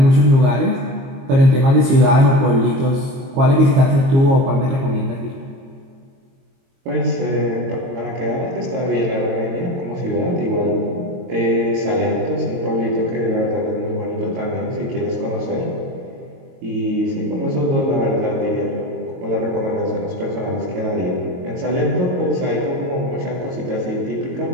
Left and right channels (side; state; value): left; late; 22 ms